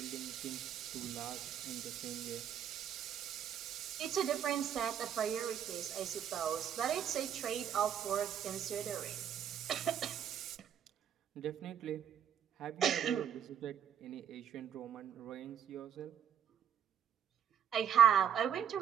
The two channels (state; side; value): quieter; left; 8.9 dB